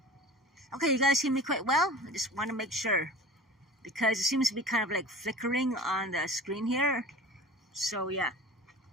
Okay, you guys hear me quite well? I just want to make sure. Because it seems to be kind of like flickering on the screen here. So, yeah.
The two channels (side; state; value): both; normal; correlation 0.39